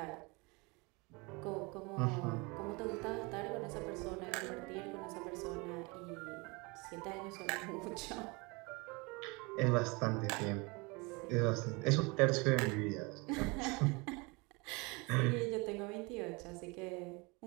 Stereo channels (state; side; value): quieter; left; 27.4 dB